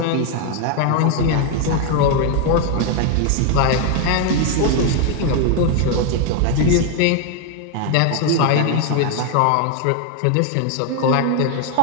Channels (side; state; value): both; different; correlation 0.01